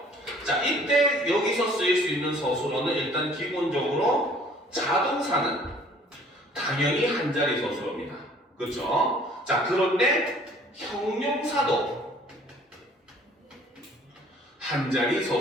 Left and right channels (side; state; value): both; normal; correlation 0.54